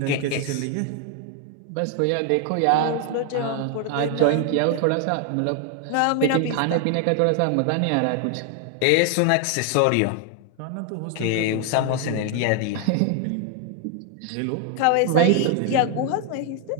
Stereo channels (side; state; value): both; different; correlation 0.00